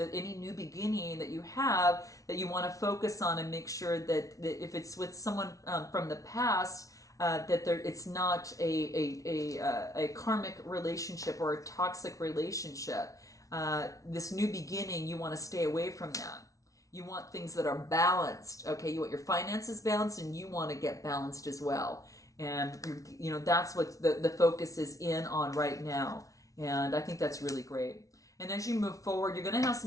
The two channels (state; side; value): late; right; 0.17 ms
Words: any new beginning that you have, that you want to focus on and make sure that if it's with someone from the past, that it's not a karmic relationship or a toxic relationship. This new beginning, you want to stay away from that. You want things that are balanced. Okay, you want your finances balanced, and you want to get balanced as well. And that's what the focus is in on right now. And I think that's really great. And as you move forward, you're going to have